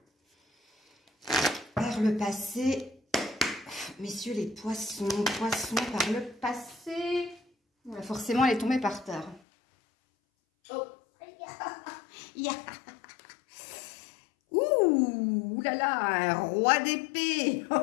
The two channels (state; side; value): drops out; right; at 9.4 s